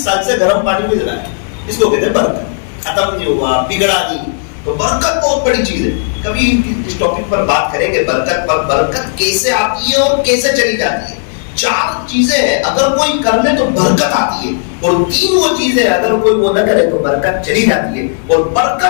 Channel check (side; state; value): right; silent; digital silence